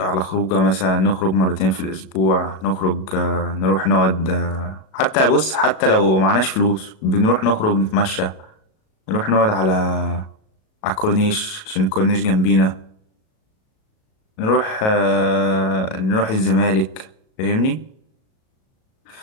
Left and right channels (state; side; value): late; right; 37 ms